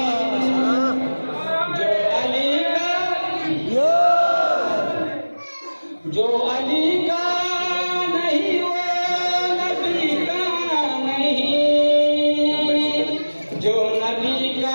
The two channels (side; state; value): both; inverted; correlation -1.00